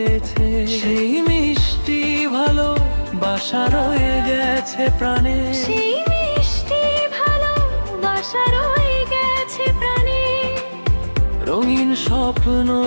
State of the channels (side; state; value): both; inverted; correlation -1.00